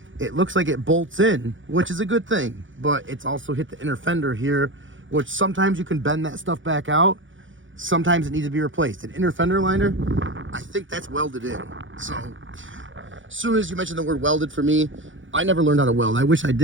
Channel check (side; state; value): left; late; 0.56 ms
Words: It looks like it bolts in, which is a good thing, but it's also hit the inner fender here, which sometimes you can bend that stuff back out. Sometimes it needs to be replaced. An inner fender liner, I think that's welded in. So as soon as you mentioned the word welded for me, I never learned how to weld. I wish I